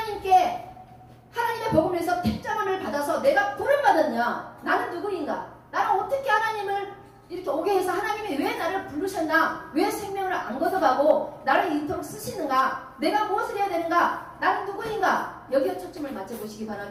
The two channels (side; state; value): both; identical; correlation 1.00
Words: 복음을 위해서 택정함을 받아서 내가 부름 받았냐? 나는 누구인가? 나는 어떻게 하나님을 이렇게 오게 해서 하나님이 왜 나를 부르셨나? 왜 생명을 안 걷어가고 나를 이토록 쓰시는가? 내가 무엇을 해야 되는가? 나는 누구인가? 여기에 초점을 맞춰보시기